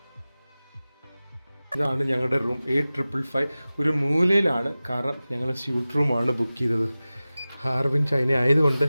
ഇതാണ് ഞങ്ങളുടെ റൂം, 8555. ഒരു മൂലയിലാണ്, കാരണം ഞങ്ങൾ സ്യൂട്ട് റൂമാണ് ബുക്ക് ചെയ്തത്. ഹാർബിൻ ചൈന ആയതുകൊണ്ട്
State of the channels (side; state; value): both; inverted; correlation -0.97